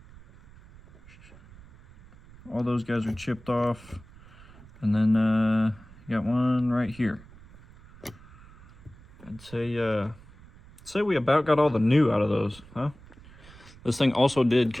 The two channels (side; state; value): right; noise; rumble, 22 dB below the sound